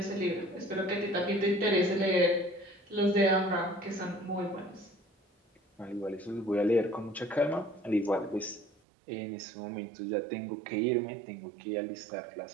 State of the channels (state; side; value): drops out; left; at 8.7 s